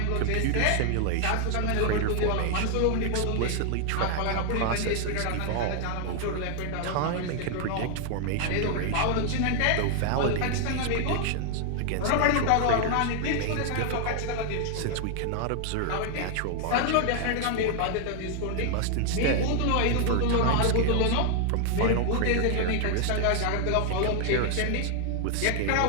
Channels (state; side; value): different; both; correlation 0.00